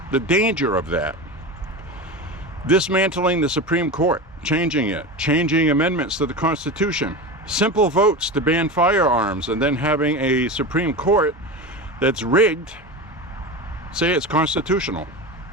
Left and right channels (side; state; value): both; normal; correlation 0.25